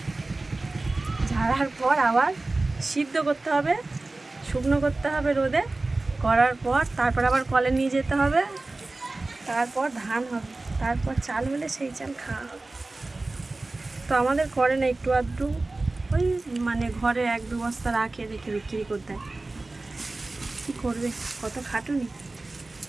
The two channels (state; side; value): quieter; left; 3.2 dB